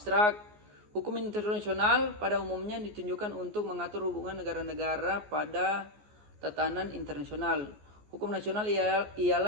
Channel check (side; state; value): left; late; 14 ms